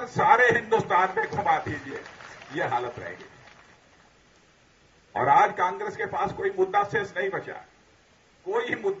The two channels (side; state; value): both; identical; correlation 1.00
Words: सारे हिंदुस्तान में घुमा दीजिए, यह हालत रह गई। और आज कांग्रेस के पास कोई मुद्दा शेष नहीं बचा, कोई